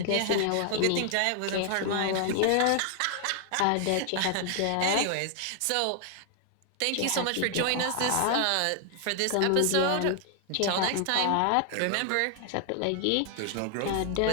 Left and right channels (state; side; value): different; both; correlation 0.00